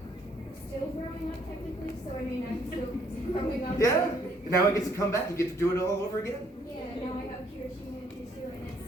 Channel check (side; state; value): both; normal; correlation 0.66